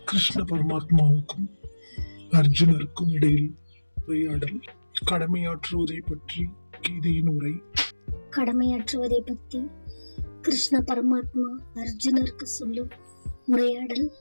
கிருஷ்ண பரமாத்மாவுக்கும் அர்ஜுனருக்கும் இடையில் உரையாடல். கடமையாற்றுவதை பற்றி கீதையின் உரை. கடமையாற்றுவதை பற்றி கிருஷ்ண பரமாத்மா அர்ஜுனருக்கு சொல்லும் உரையாடல்.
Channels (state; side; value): inverted; both; correlation -1.00